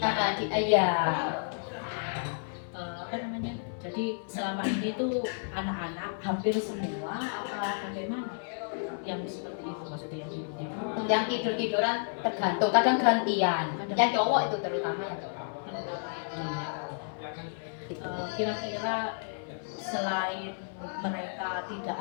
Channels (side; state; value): right; silent; 57 dB below the other